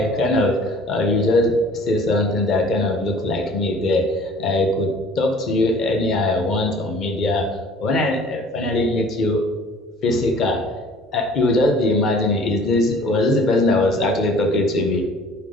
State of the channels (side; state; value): both; normal; correlation 0.50